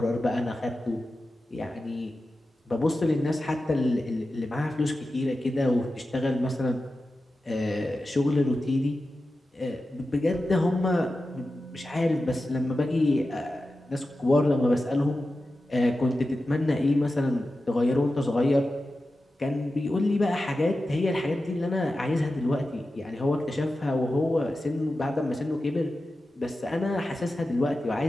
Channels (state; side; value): normal; both; correlation 0.93